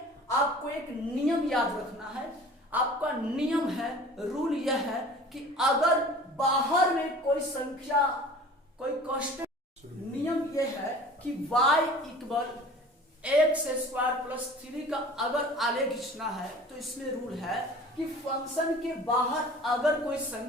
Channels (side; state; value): both; normal; correlation 0.44